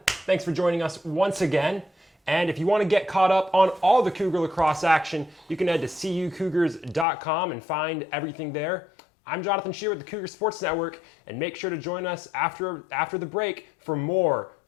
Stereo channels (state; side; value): drops out; right; at 7.1 s